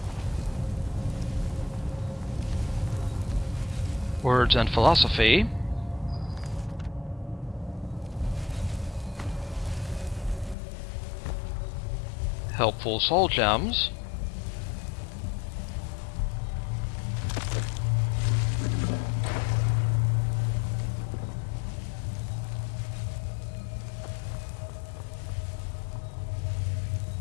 Words and philosophy. Helpful soul gems.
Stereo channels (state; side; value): drops out; right; at 10.6 s